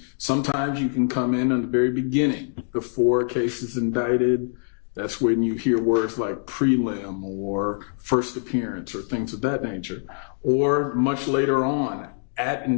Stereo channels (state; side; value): silent; right; digital silence